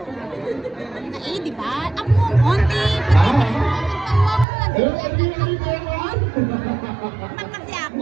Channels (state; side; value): drops out; left; at 4.5 s